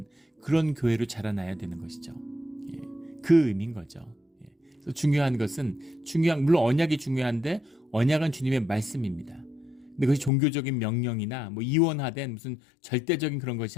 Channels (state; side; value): drops out; right; at 10.3 s